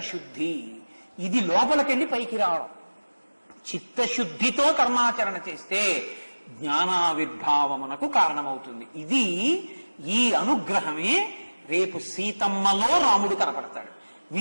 ఇది లోపలికెళ్ళి పైకి రావడం. చిత్తశుద్ధితో కర్మాచరణ చేస్తే జ్ఞానావిర్భావమునకు కారణమవుతుంది. ఇది ఈ అనుగ్రహమే రేపు సీతమ్మలో రాముడు కనపడతాడు,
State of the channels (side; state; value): both; inverted; correlation -1.00